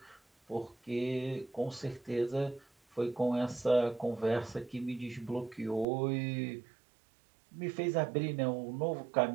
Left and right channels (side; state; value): left; drops out; at 5.9 s